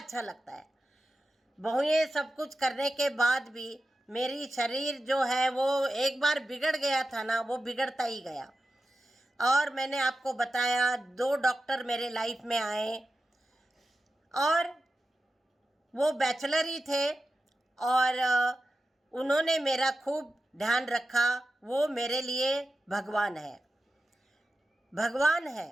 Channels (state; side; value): normal; both; correlation 0.92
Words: लगता है। बहुएं सब कुछ करने के बाद भी मेरी शरीर जो है वो एक बार बिगड़ गया था ना, वो बिगड़ता ही गया। और मैंने आपको बताया 2 डॉक्टर मेरे लाइफ में आए और वो बैचलर ही थे और उन्होंने मेरा खूब ध्यान रखा। वो मेरे लिए भगवान है, भगवान है।